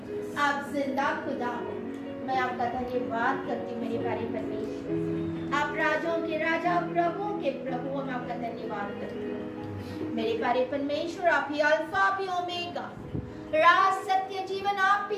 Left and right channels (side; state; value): both; identical; correlation 1.00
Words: आप जिंदा खुदा हो, मैं आपका धन्यवाद करती हूँ मेरे प्यारे परमेश्वर। आप राजाओं के राजा, प्रभुओं के प्रभु, मैं आपका धन्यवाद करती हूँ मेरे प्यारे परमेश्वर। आप ही अल्फा, आप ही ओमेगा, राज सत्य जीवन आप